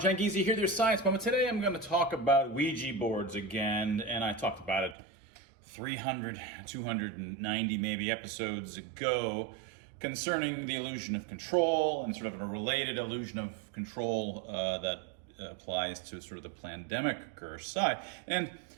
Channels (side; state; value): left; drops out; at 5.0 s